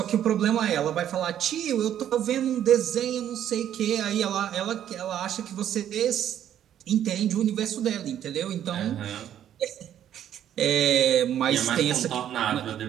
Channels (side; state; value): left; quieter; 10.6 dB